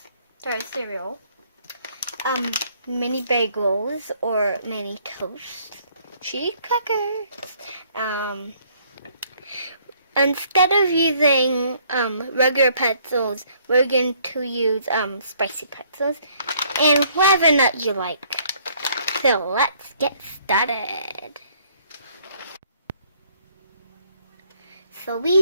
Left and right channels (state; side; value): inverted; both; correlation -0.63